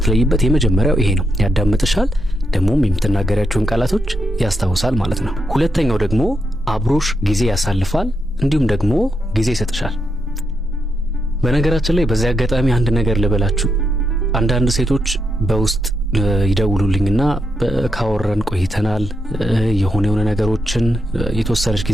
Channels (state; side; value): normal; both; correlation 0.82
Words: የመጀመሪያው ይሄ ነው። ያዳምጥሻል፣ ደግሞም የምትናገሪያቸውን ቃላቶች ያስታውሳል ማለት ነው። ሁለተኛው ደግሞ አብሮሽ ጊዜ ያሳልፋል፣ እንዲሁም ደግሞ ጊዜ ይሰጥሻል። በነገራችን ላይ በዚህ አጋጣሚ አንድ ነገር ልበላችሁ። አንዳንድ ሴቶች በውስጥ ይደውሉልኝና ካወራን ቆይተናል፣ የሆነ ነገሮችን የተወሰነች